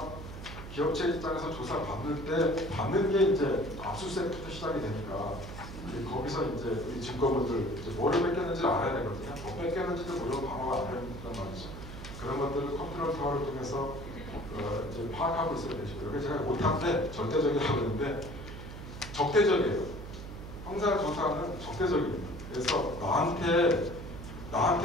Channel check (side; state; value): right; noise; hum, 11 dB below the sound